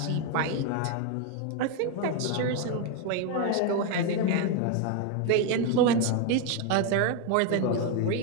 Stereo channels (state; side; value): different; both; correlation 0.01